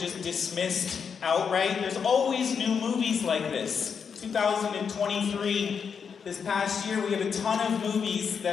dismissed outright. There's always new movies like this. 2023, this past year, we have a ton of movies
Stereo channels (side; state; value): right; quieter; 6.5 dB